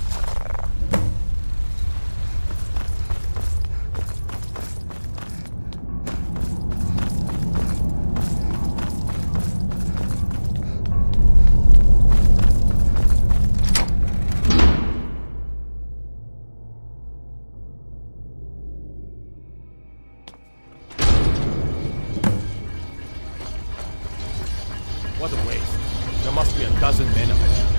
What a waste. There must be a dozen men of it.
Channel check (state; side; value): inverted; both; correlation -1.00